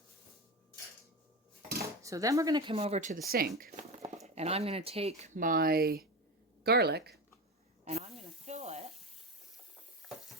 So then we're going to come over to the sink, and I'm going to take my garlic and I'm going to fill it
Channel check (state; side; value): normal; both; correlation 0.22